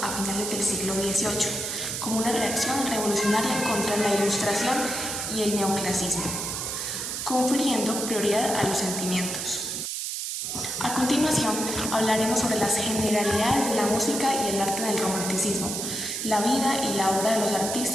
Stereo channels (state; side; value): noise; right; hiss, 3 dB below the sound